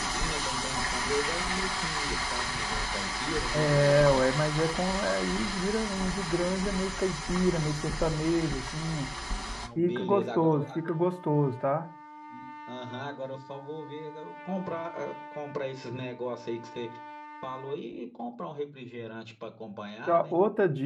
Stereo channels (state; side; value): identical; both; correlation 1.00